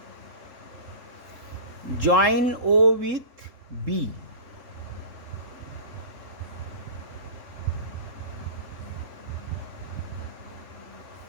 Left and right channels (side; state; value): left; late; 3.7 ms